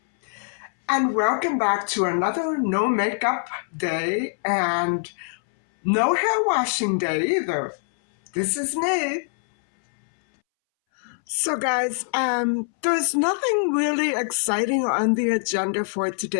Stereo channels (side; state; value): right; silent; 63 dB below the other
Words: and welcome back to another no makeup day and no hair washing day either. This is me. So guys, there's nothing really exciting on the agenda for